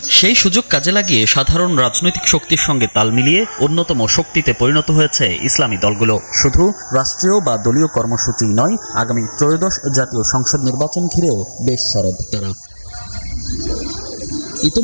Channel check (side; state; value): both; inverted; correlation -1.00